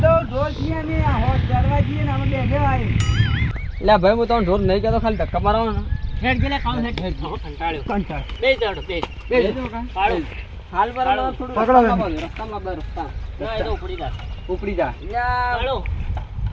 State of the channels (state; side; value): identical; both; correlation 1.00